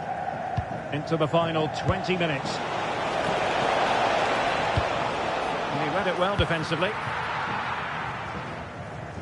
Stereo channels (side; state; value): both; identical; correlation 1.00